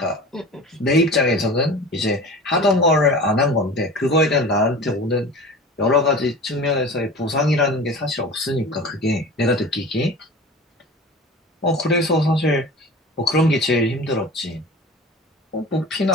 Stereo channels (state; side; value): normal; both; correlation 0.36